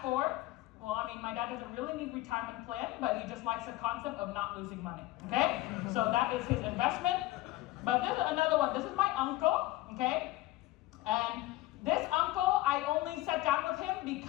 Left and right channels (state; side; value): quieter; right; 17.5 dB